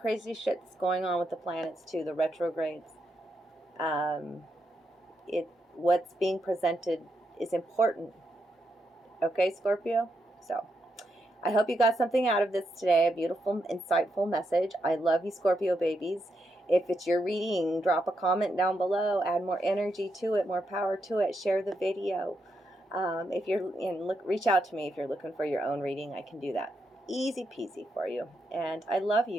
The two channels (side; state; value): both; normal; correlation 0.82